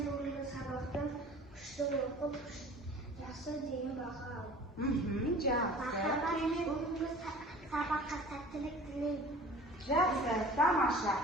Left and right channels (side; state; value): both; normal; correlation 0.44